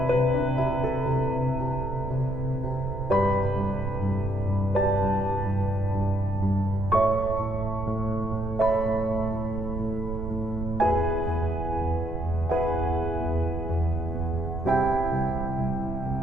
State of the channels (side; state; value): right; noise; rumble, 5 dB below the sound